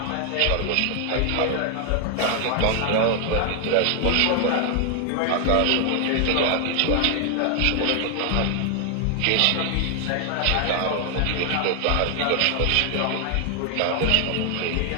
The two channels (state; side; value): different; both; correlation 0.00